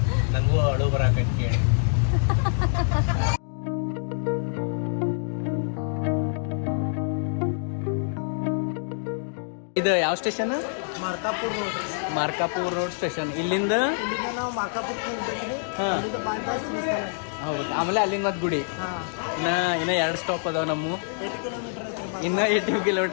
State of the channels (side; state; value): right; silent; digital silence